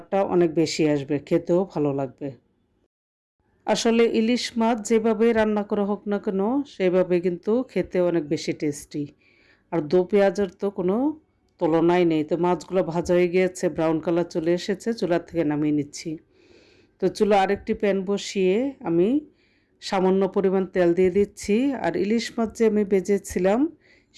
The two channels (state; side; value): identical; both; correlation 1.00